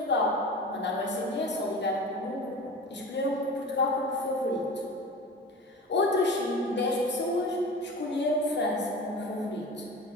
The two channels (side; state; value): both; normal; correlation 0.34